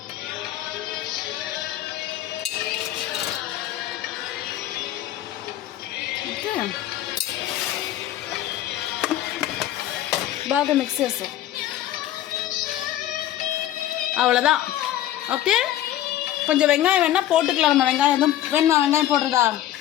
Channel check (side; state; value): right; quieter; 12.8 dB